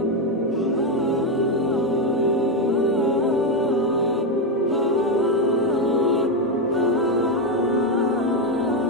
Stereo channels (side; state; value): both; normal; correlation 0.06